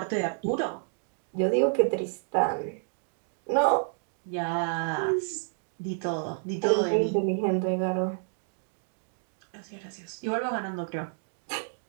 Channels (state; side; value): silent; left; digital silence